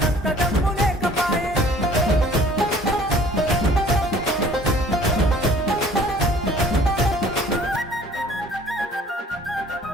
కంత దమ్ము లేకపాయే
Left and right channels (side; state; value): both; normal; correlation 0.53